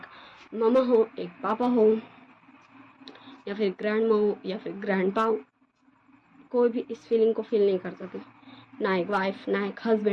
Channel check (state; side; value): identical; both; correlation 1.00